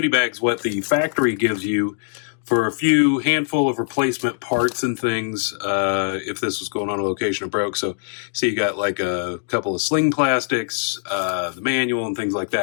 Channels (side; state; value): right; silent; 64 dB below the other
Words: bag's what the factory gives you for a few handful of replacement parts and things if this was going on a location and broke. So you got like a couple of sling plastics, the manual and things like